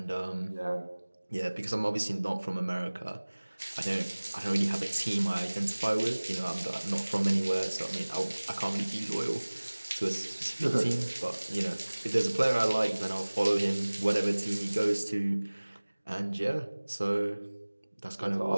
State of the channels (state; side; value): inverted; both; correlation -1.00